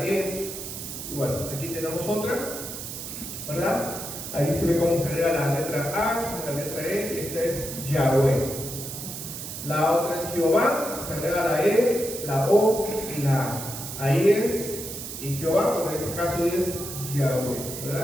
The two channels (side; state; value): right; noise; hiss, 8 dB below the sound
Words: E. Y bueno, aquí tenemos otra, ¿verdad? Ahí se ve cómo se agrega la letra A, la letra E, y esta es Yahweh. La otra es Jehová, se agrega la E, la O y la A. Ahí es, y Jehová, en este caso es Yahweh,